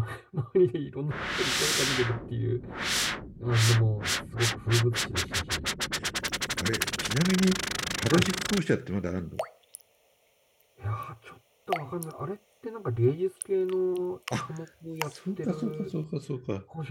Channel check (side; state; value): both; identical; correlation 1.00